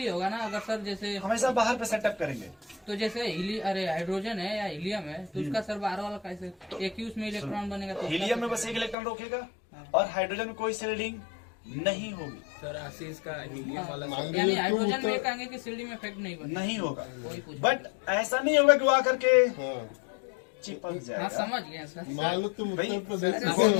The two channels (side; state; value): right; drops out; at 9.0 s